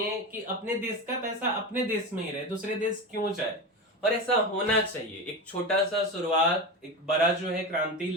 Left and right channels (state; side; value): normal; both; correlation 0.22